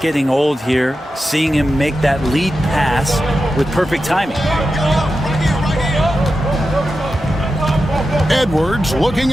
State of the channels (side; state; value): both; normal; correlation 0.91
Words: old here, seeing him make that lead pass with perfect timing. Edwards looking